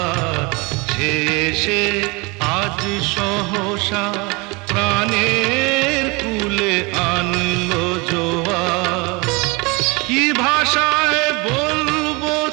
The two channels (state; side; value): quieter; left; 27.2 dB